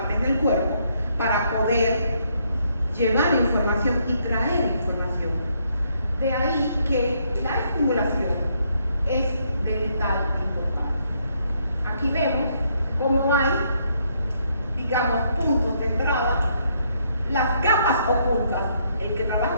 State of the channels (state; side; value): inverted; both; correlation -0.72